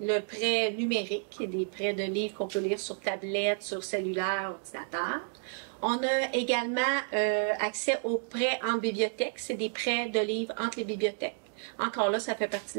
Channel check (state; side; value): silent; left; 56 dB below the other